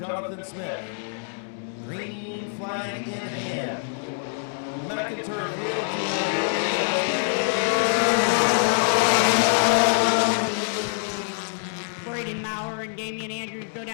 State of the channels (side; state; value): right; silent; digital silence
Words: Smith. Green flag in hand. McIntyre Braden Maurer and Damian Andrews go